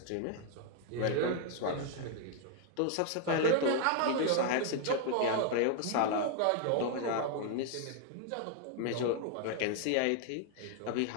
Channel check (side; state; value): both; different; correlation 0.00